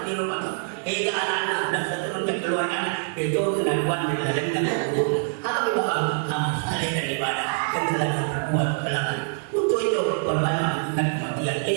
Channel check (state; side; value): silent; left; 62 dB below the other